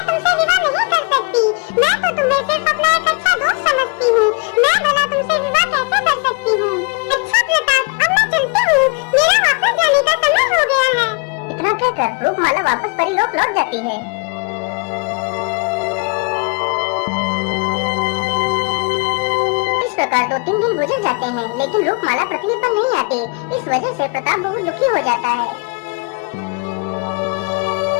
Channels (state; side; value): quieter; right; 32.9 dB